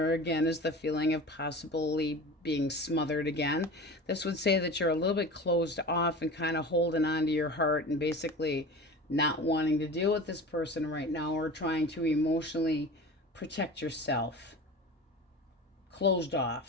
again is the feeling of possibly being smothered again. This would say that you're a little bit closed off and kind of holding on to your heart and basically not wanting to deal with this person right now, or trying to emotionally protect yourself. Closed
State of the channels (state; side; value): normal; both; correlation 0.34